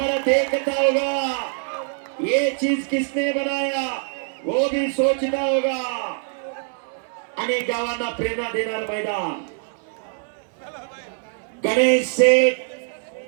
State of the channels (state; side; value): silent; left; 55 dB below the other